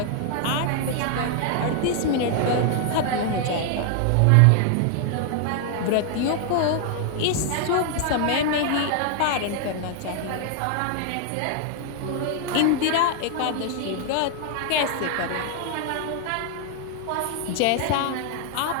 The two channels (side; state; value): both; different; correlation 0.00